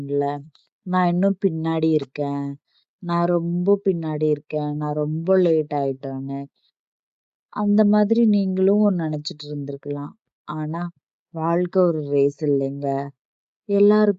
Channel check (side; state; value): both; identical; correlation 1.00